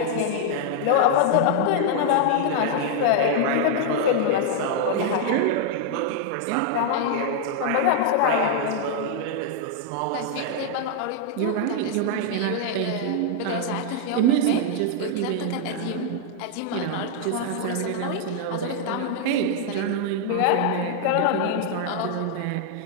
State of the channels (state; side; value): different; both; correlation 0.00